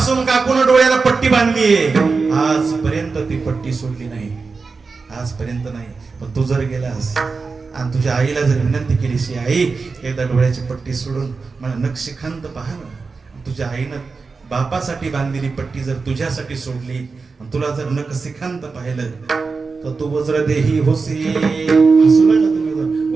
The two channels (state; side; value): quieter; left; 4.5 dB